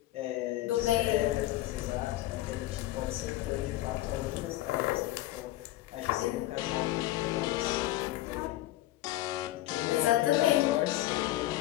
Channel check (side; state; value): right; quieter; 15.9 dB